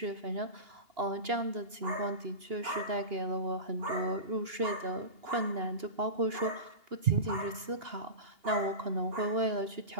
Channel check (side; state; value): left; late; 2.8 ms